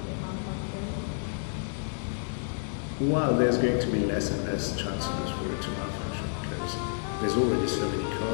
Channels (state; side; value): silent; right; 58 dB below the other